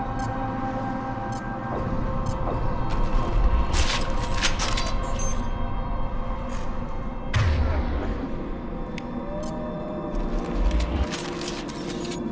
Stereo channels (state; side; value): identical; both; correlation 1.00